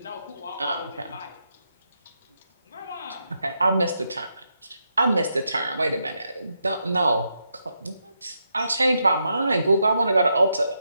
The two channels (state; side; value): inverted; both; correlation -0.82